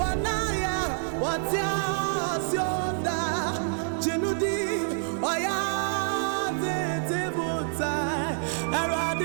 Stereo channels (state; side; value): silent; left; 60 dB below the other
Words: watia sionda, jinudi, oya, tetibuta,